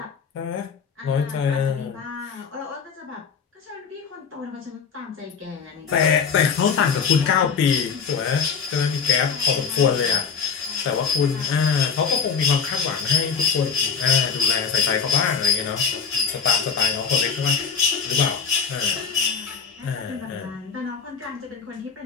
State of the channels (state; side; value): quieter; right; 6.0 dB